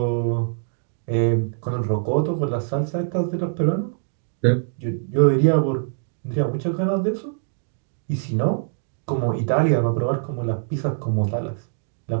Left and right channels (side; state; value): left; silent; digital silence